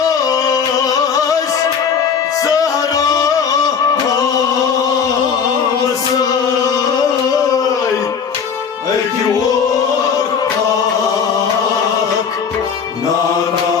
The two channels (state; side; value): quieter; right; 6.6 dB